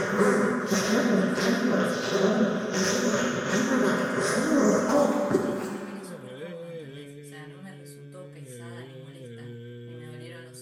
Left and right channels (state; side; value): identical; both; correlation 1.00